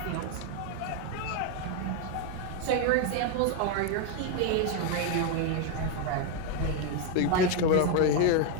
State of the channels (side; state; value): both; different; correlation 0.01